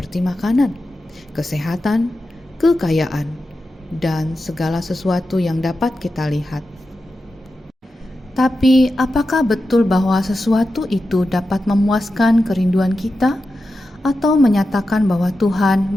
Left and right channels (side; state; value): both; normal; correlation 0.91